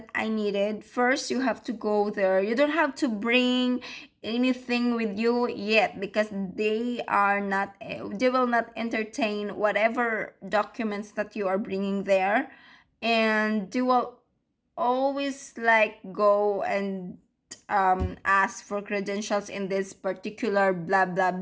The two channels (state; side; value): identical; both; correlation 1.00